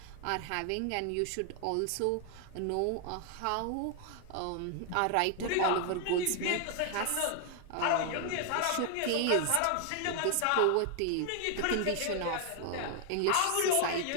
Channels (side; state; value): both; different; correlation 0.00